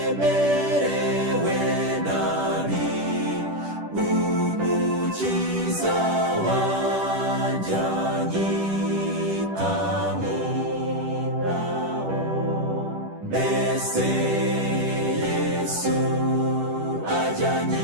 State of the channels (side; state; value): left; late; 10 ms